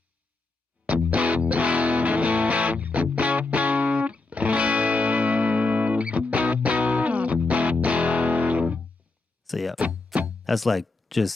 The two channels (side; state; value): right; quieter; 3.4 dB